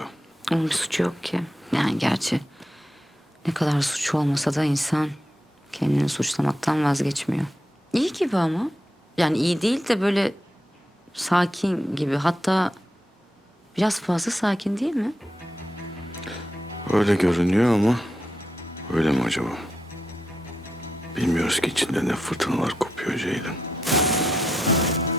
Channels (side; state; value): both; normal; correlation 0.85